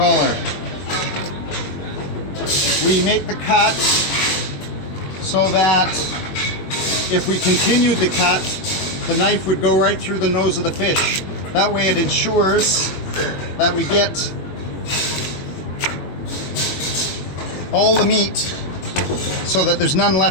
We make the cut so that if we continued the cut, the knife would go right through the nose of the fish. That way it ensures that we get all the meat so that there's none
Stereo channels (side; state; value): right; late; 21 ms